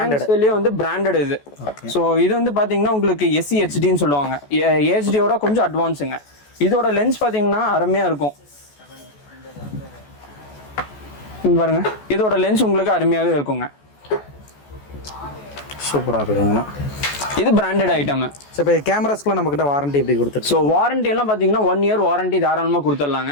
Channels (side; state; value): right; late; 14 ms